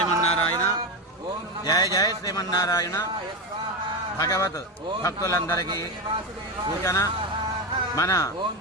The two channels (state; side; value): normal; both; correlation 0.15